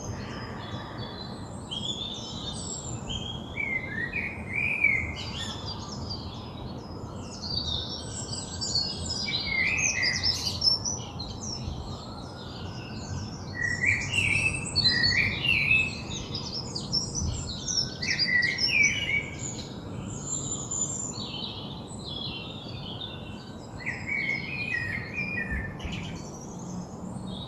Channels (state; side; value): identical; both; correlation 1.00